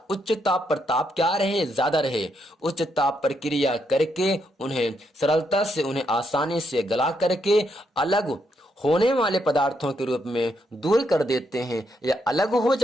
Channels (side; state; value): both; normal; correlation 0.78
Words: उच्च ताप पर, ताप क्या रहे, ज्यादा रहे, उच्च ताप पर क्रिया करके उन्हें सरलता से, उन्हें आसानी से गला करके अलग होने वाले पदार्थों के रूप में दूर कर देते हैं या अलग हो